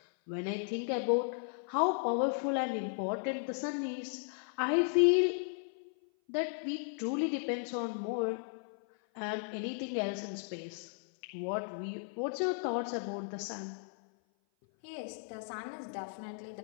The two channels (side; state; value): right; silent; 54 dB below the other